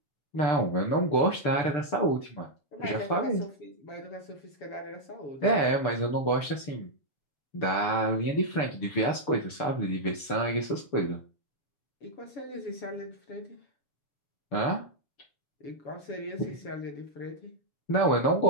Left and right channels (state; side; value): late; right; 6.8 ms